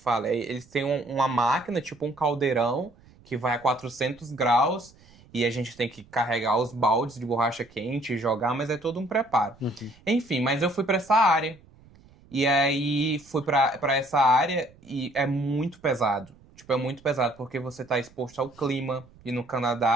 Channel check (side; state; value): right; noise; rumble, 27 dB below the sound